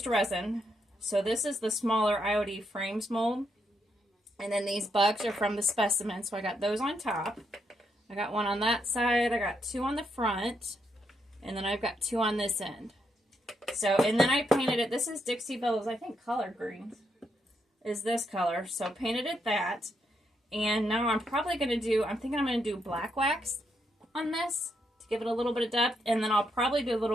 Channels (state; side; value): normal; both; correlation 0.79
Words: resin. So this is the smaller IOD frames mold. And then these bugs are from the specimen. So I got those on top. I got one on that side. I got two on the front. And then I've got two on this end. So, and then I painted it. This is Dixie Belle's, I think, collard greens is this color. So painted it that. And now I'm probably going to do, I'm thinking I'm going to do black wax on this to give it a little bit of depth. And then I'll probably do a